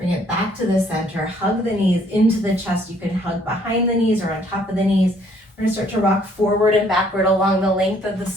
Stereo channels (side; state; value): both; normal; correlation 0.63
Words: it back to the center, hug the knees into the chest. You can hug behind the knees or on top of the knees. We're gonna start to rock forward and backward along the length of the